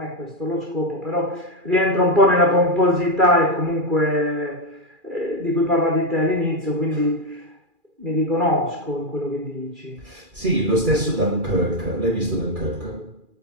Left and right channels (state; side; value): late; left; 2.4 ms